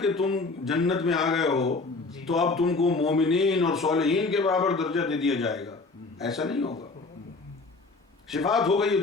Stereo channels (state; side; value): quieter; right; 3.7 dB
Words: کہ تم جنت میں آ گئے ہو تو اب تم کو مومنین اور صالحین کے برابر درجہ دے دیا جائے گا. ایسا نہیں ہوگا. شفاعت ہو گئی ہے